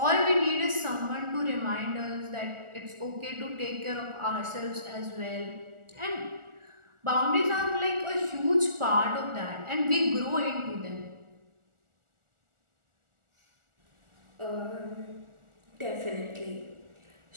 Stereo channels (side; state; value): left; late; 1.4 ms